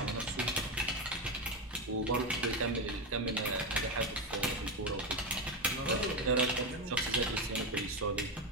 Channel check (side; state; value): both; normal; correlation 0.13